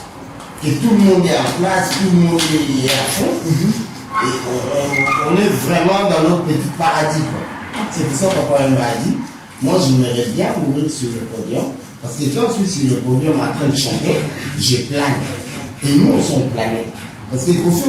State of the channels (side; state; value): both; identical; correlation 1.00